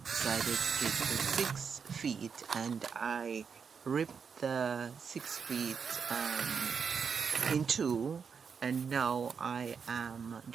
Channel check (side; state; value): left; quieter; 6.2 dB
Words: decided to take the 6 feet, and I ripped the 6 feet in two, and now I am